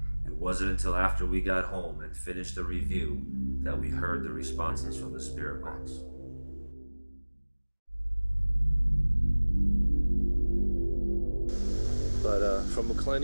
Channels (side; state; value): both; inverted; correlation -1.00